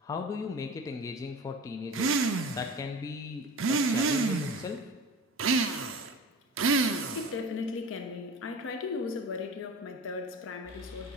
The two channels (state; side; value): normal; both; correlation 0.35